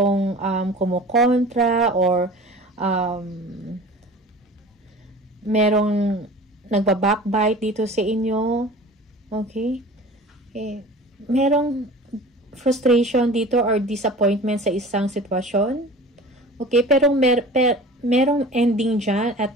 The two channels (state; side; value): normal; both; correlation 0.40